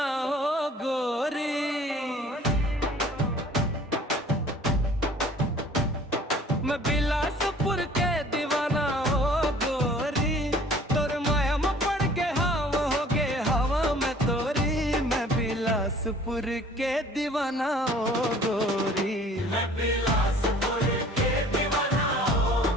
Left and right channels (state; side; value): normal; both; correlation 0.52